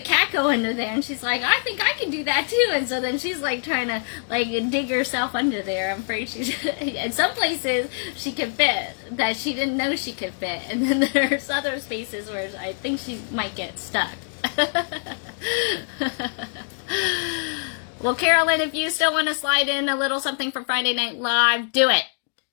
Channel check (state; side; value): silent; right; digital silence